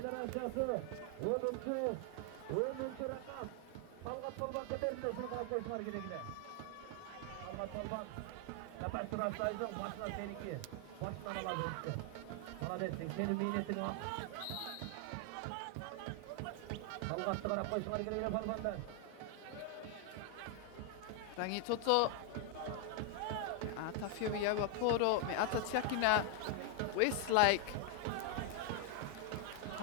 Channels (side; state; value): both; different; correlation 0.00